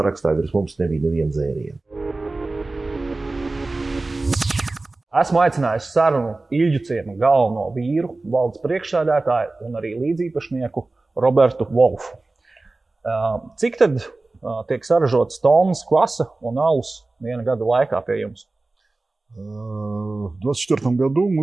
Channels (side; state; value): left; quieter; 3.2 dB